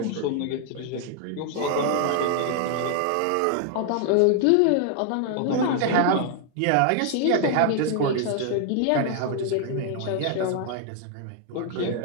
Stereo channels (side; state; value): both; different; correlation 0.00